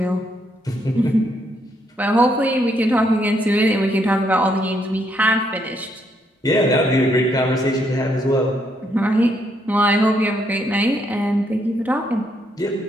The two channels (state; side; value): normal; both; correlation 0.74